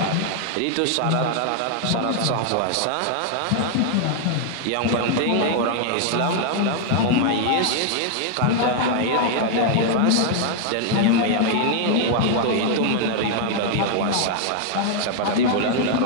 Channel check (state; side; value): different; both; correlation 0.00